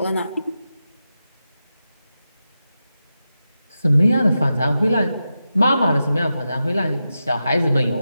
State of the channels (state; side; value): inverted; both; correlation -0.90